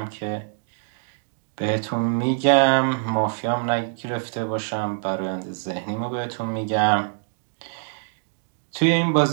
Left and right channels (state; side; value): silent; left; digital silence